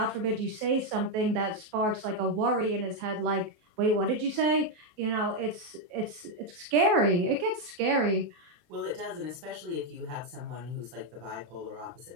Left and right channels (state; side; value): late; left; 23 ms